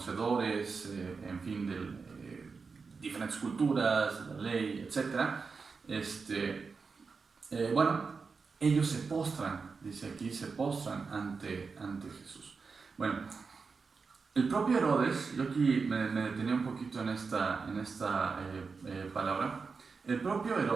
en fin, de diferentes culturas, de la ley, etc. Bueno, ellos se postran, dice aquí, se postran ante Jesús. Bueno, el propio Herodes, yo aquí me detenía un poquito en esta palabra. El propio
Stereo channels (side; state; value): left; quieter; 4.9 dB